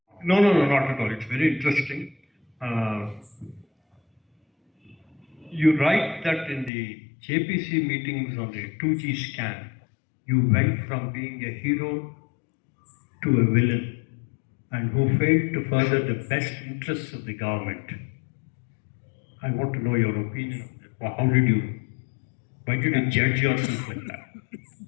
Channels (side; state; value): right; drops out; at 6.7 s